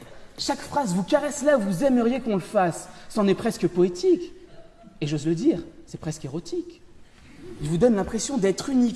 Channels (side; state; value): both; identical; correlation 1.00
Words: Chaque phrase vous caresse là où vous aimeriez qu'on le fasse. C'en est presque poétique. Et j'ose le dire, c'est presque érotique. Il vous donne l'impression d'être